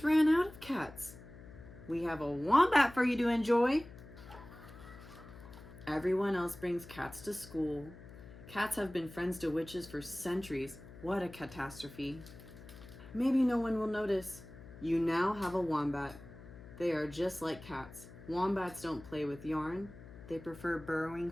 ran out of cats. We have a wombat for you to enjoy. Everyone else brings cats to school. Cats have been friends to witches for centuries. What a catastrophe. Maybe no one will notice. You now have a wombat. They are just like cats. Wombats don't play with yarn. They prefer burrowing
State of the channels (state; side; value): noise; left; hum, 17 dB below the sound